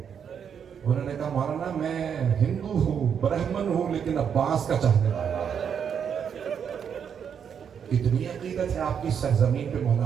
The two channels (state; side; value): quieter; left; 7.6 dB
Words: انہوں نے کہا مولانا میں ہندو ہوں, برہمن ہوں, لیکن عباس کا چاہنے والا ہوں. اتنی عقیدت ہے آپ کی سرزمین پہ مولانا